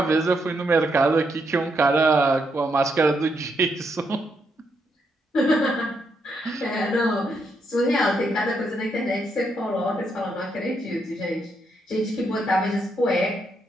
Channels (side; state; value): both; normal; correlation 0.78